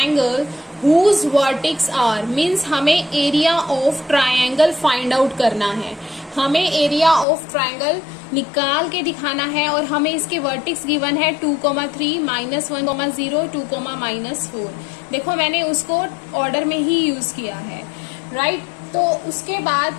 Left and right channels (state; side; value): drops out; right; at 7.2 s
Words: whose vertex are, means हमें area of triangle find out करना है। हमें एरिया ऑफ ट्राइंगल निकाल के दिखाना है और हमें इसके वर्टेक्स गिवन है 2,3, -1,0, 2, -4। देखो मैंने उसको ऑर्डर में ही यूज किया है, राइट? तो उसके